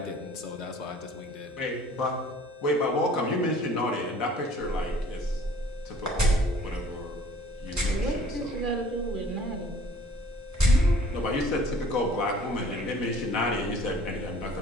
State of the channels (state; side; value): normal; both; correlation 0.53